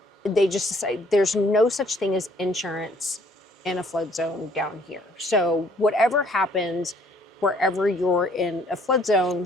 they just decided there's no such thing as insurance in a flood zone down here. So whatever happens, wherever you're in a flood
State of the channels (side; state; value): both; normal; correlation 0.62